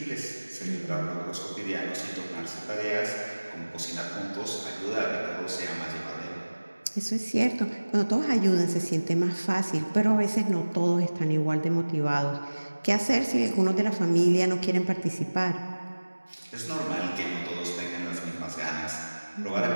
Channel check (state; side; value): inverted; both; correlation -1.00